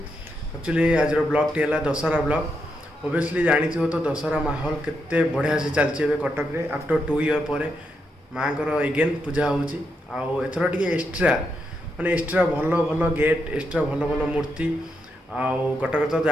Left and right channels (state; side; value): normal; both; correlation 0.82